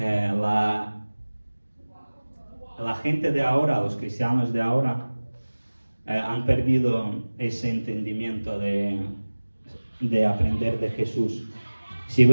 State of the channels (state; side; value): inverted; both; correlation -1.00